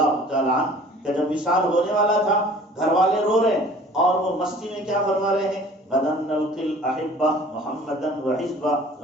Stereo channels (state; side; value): normal; both; correlation 0.49